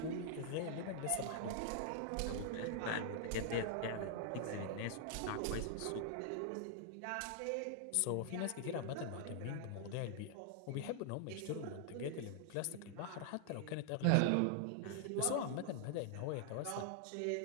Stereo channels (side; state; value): both; different; correlation -0.01